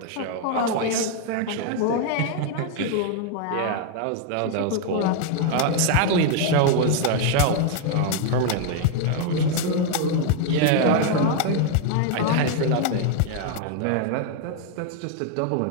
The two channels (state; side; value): different; both; correlation 0.00